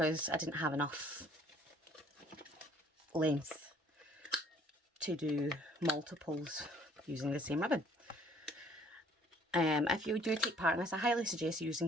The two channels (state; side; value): normal; both; correlation 0.58